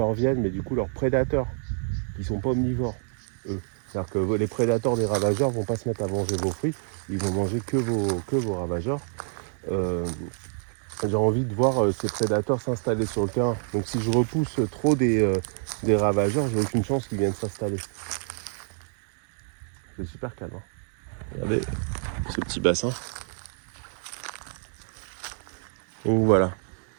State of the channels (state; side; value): silent; left; 56 dB below the other